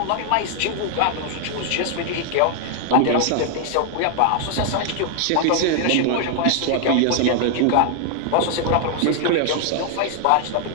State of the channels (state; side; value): different; both; correlation 0.00